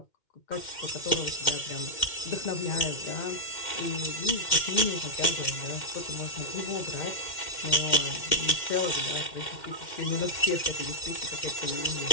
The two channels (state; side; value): late; right; 2.1 ms